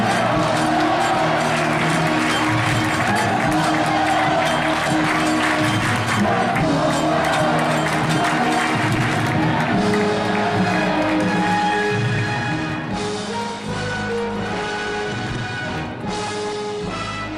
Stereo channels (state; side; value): identical; both; correlation 1.00